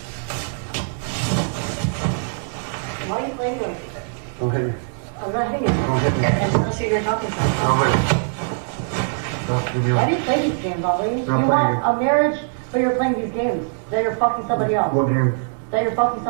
Why are you playing like this? Don't hit me. I'm not hitting you. Don't hit me. I just want to see who you're talking to. Don't hit me. Stop. Leave me Why alone. do you play these games, Ali? You playing want games. a marriage, but you're playing these games. That you're fucking somebody else. What game? That you're fucking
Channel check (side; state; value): left; silent; digital silence